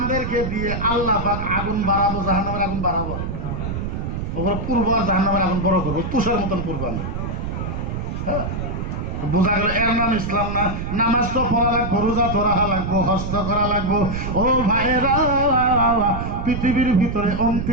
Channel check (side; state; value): right; noise; rumble, 4 dB below the sound